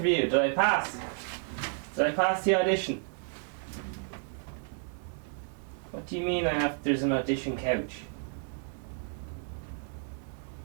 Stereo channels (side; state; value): left; silent; 57 dB below the other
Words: Did I pass? Did I pass the audition? What do you mean there's an audition couch?